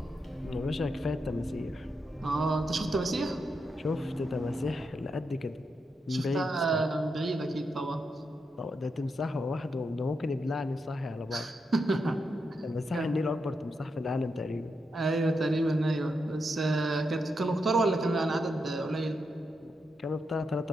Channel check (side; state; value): both; normal; correlation 0.84